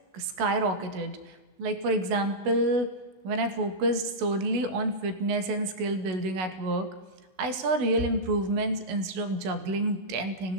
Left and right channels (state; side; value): late; left; 16 ms